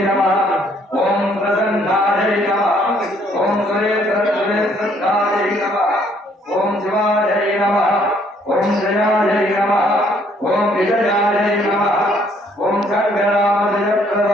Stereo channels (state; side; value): normal; both; correlation 0.65